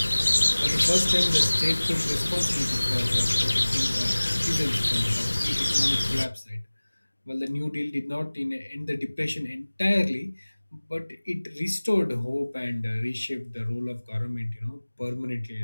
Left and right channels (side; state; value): both; inverted; correlation -1.00